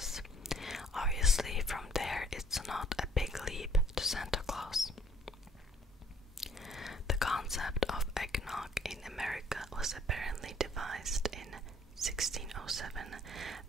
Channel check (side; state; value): both; normal; correlation 0.60